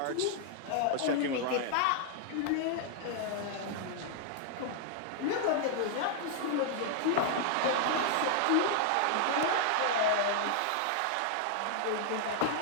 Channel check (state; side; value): different; both; correlation -0.01